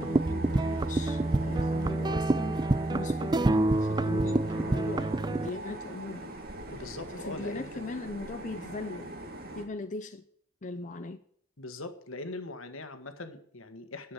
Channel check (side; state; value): both; normal; correlation 0.76